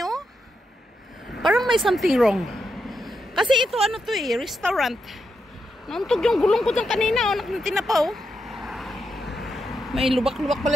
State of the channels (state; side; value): normal; both; correlation 0.84